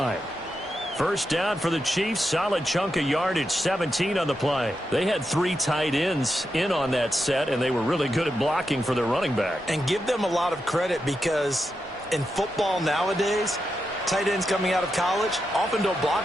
First down for the Chiefs. Solid chunk of yardage, 17 on the play. They had 3 tight ends in on that set, and they were really good at blocking for their running back. And give them a lot of credit because in football nowadays, tight ends coming out of college often don't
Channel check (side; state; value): both; normal; correlation 0.87